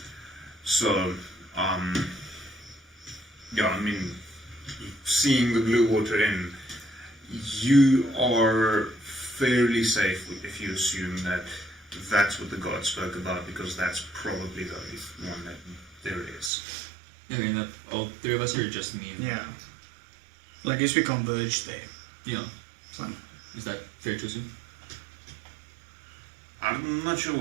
So, yeah, I mean, seeing the Blue Water Inn, you are fairly safe if you assume that that's what the god spoke about, because that's probably the only one that there is. I mean, all three of us are just me. Yeah. Well, I guess we converged there. Yeah. So, Is that fair to assume? I'm not sure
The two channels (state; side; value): drops out; left; at 16.5 s